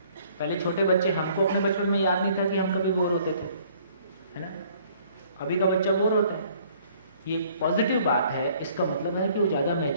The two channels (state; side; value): inverted; both; correlation -0.59